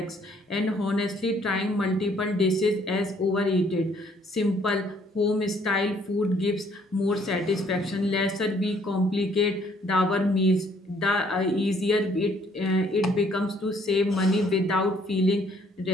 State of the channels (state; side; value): normal; both; correlation 0.63